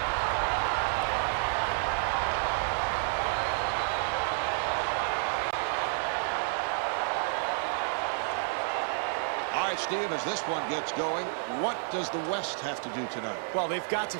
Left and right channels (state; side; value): silent; left; digital silence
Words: All right, Steve, as this one gets going, what does the West have to do tonight? Well, they've got to